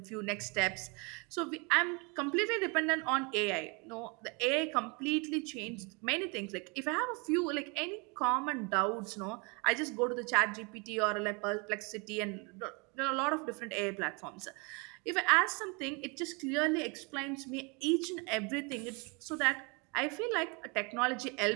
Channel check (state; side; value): quieter; left; 31.1 dB